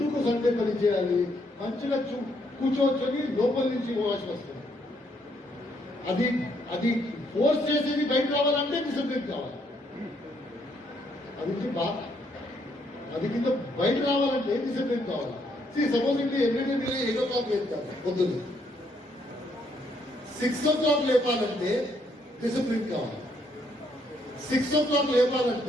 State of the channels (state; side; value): normal; both; correlation 0.72